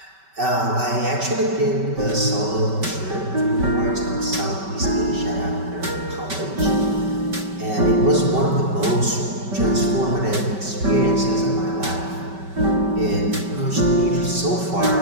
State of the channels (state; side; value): late; left; 5.2 ms